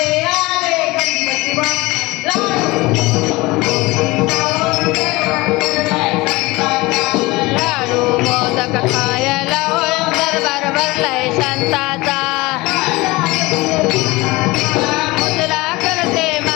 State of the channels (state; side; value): quieter; right; 21.7 dB